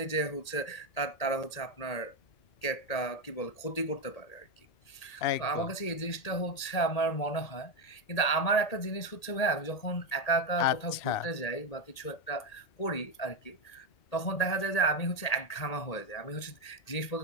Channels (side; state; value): right; late; 1.8 ms